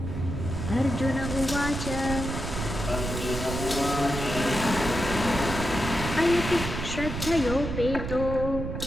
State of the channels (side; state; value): right; noise; rumble, 5 dB below the sound